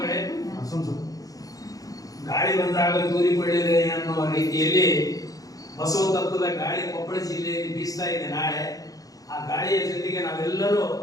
ಗಾಳಿ ಬಂದಾಗ ತೂರಿಕೊಳ್ಳಿದೆ ಅನ್ನುವ ರೀತಿಯಲ್ಲಿ ಬಸವ ತತ್ವದ ಗಾಳಿ ಕೊಪ್ಪಳ ಜಿಲ್ಲೆಯಲ್ಲಿ ಬೀಸ್ತಾ ಇದೆ. ನಾಳೆ ಆ ಗಾಳಿಯ ಜೊತೆಗೆ ನಾವೆಲ್ಲರೂ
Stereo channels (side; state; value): right; late; 0.17 ms